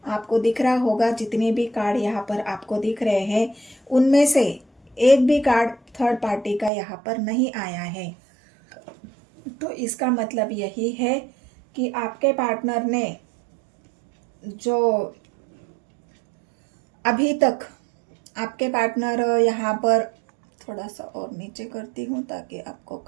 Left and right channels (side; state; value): left; drops out; at 6.7 s